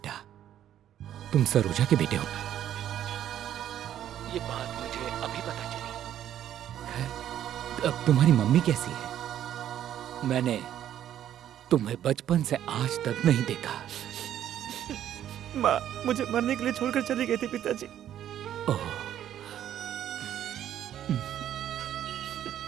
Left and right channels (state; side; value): quieter; left; 11.0 dB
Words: तुम सरोजा के बेटे हो ना? ये बात मुझे अभी पता चली। अब तुम्हारी मम्मी कैसी है? मैंने तुम्हें बचपन से आज तक नहीं देखा। माँ मुझे मरने के लिए छोड़कर चली गई थी पिताजी। ओह।